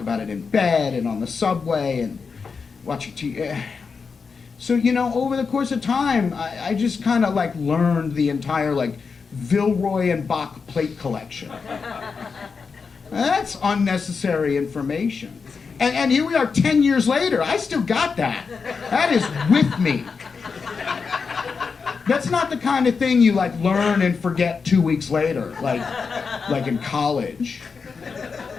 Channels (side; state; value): right; quieter; 5.2 dB